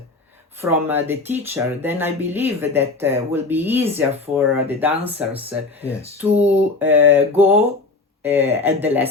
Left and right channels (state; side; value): quieter; right; 3.5 dB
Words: from the teacher, then I believe that will be easier for the dancers to go at the